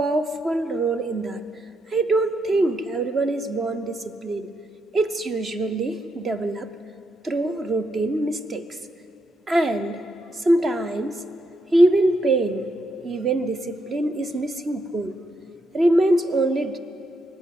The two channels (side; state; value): both; normal; correlation 0.80